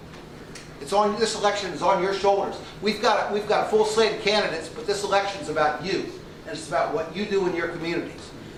This election is on your shoulders. We've got a full slate of candidates, but this election is about you, and it's about what you do in your communities.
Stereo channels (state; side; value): identical; both; correlation 1.00